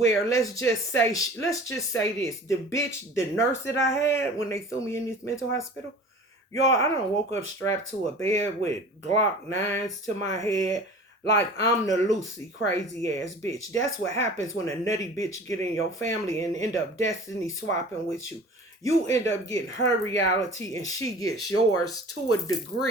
let's just say this. The bitch, the nurse that I had when they threw me in this mental hospital, y'all, I done woke up strapped to a bed with Glock 9s to my head like I'm the Lucy crazy ass bitch. That's what happens when a nutty bitch get in your family and end up destiny swapping with you. You end up getting her reality and she gets yours to a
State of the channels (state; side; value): normal; both; correlation 0.42